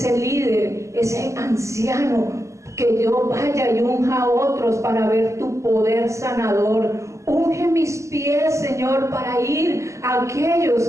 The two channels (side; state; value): left; late; 0.14 ms